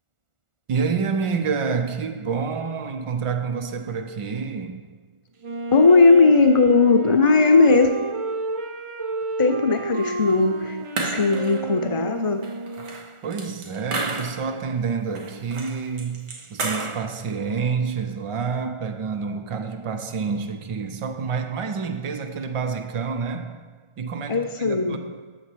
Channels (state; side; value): late; left; 1.4 ms